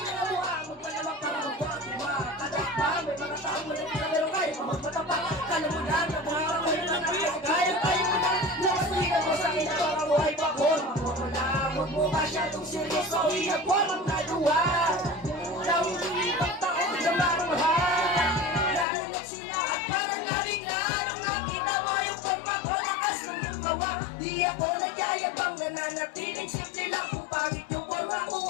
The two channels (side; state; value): right; drops out; at 18.9 s